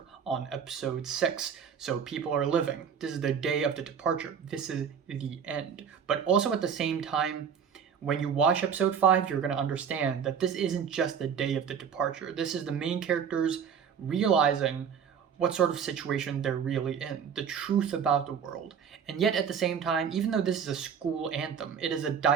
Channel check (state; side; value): quieter; left; 7.3 dB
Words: on episode 6. So people are living. This is the day of the departure. This is the end. But also at the same time, when you watch episode 5, you're going to understand that this isn't just the day of the departure. This is the main characters realizing what sort of situation they're really in, the truth about the world. And yet at the same time, even though this is a school anthem, it is a